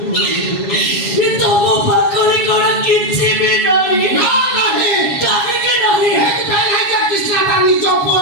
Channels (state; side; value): late; right; 7.2 ms